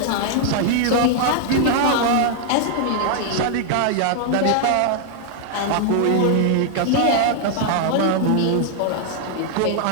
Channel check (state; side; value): different; both; correlation 0.00